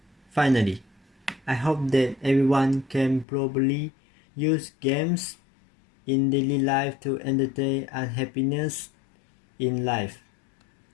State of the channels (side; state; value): right; drops out; at 3.2 s